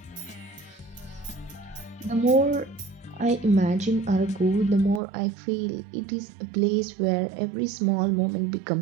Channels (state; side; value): drops out; left; at 5.0 s